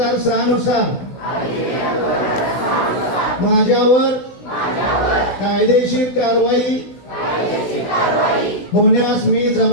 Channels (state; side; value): late; right; 16 ms